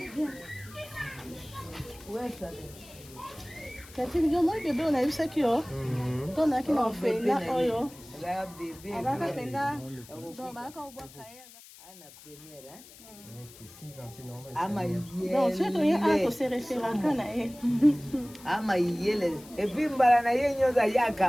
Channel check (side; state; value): left; noise; hiss, 20 dB below the sound